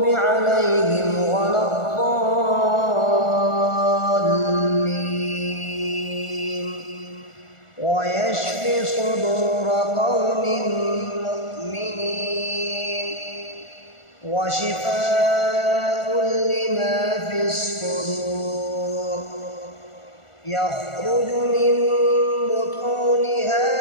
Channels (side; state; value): right; late; 1.4 ms